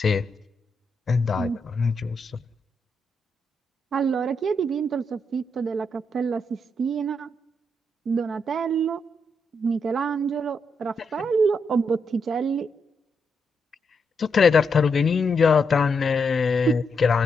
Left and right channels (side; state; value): both; normal; correlation 0.81